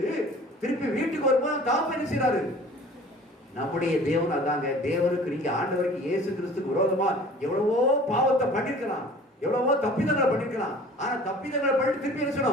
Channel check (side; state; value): both; normal; correlation 0.46